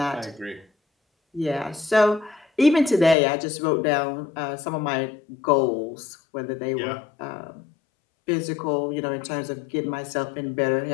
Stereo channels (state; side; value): drops out; right; at 3.2 s